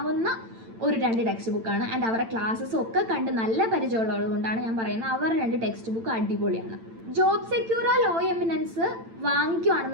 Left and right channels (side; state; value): left; late; 8.9 ms